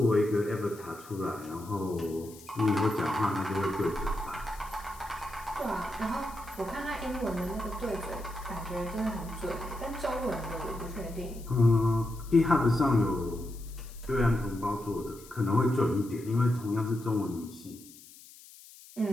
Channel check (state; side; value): noise; left; hiss, 20 dB below the sound